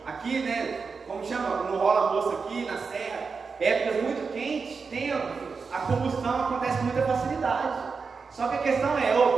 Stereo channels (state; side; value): quieter; left; 5.0 dB